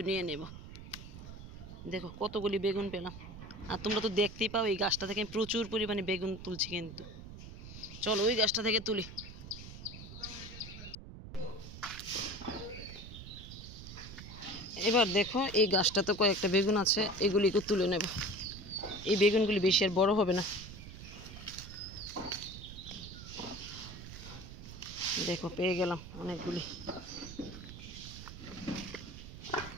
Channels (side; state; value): right; noise; rumble, 13 dB below the sound